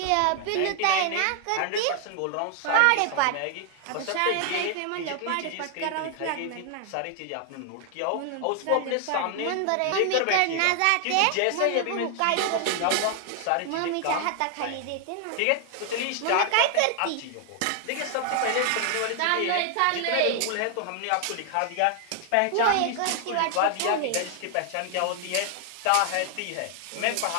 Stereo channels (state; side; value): different; both; correlation 0.00